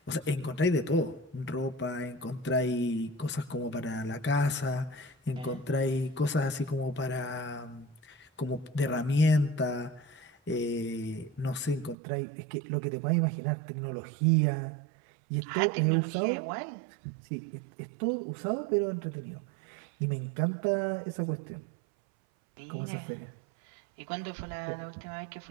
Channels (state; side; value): drops out; left; at 12.0 s